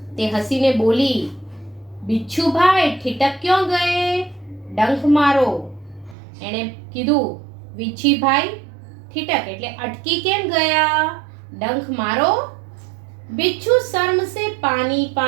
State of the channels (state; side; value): drops out; left; at 6.2 s